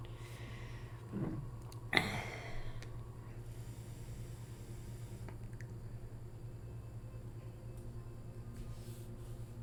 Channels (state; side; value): identical; both; correlation 1.00